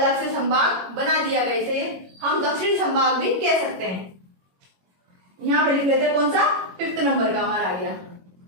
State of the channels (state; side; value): late; left; 21 ms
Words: से संभाग बना दिया गया, इसे हम दक्षिणी संभाग भी कह सकते हैं। यहाँ पे लिख लेते हैं कौन सा, 5th नंबर का हमारा आ गया